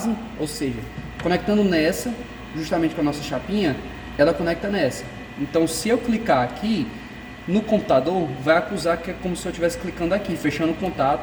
ou seja, conectando nessa, justamente com a nossa chapinha, ela conecta nessa. Então, se eu clicar aqui, no computador vai acusar que é como se eu estivesse clicando aqui, fechando o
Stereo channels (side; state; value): both; identical; correlation 1.00